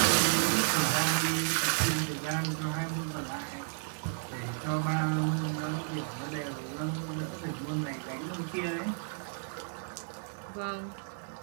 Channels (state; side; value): silent; left; digital silence